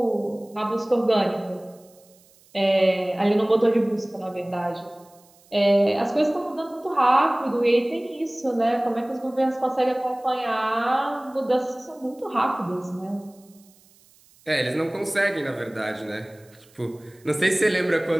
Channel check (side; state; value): right; noise; hiss, 29 dB below the sound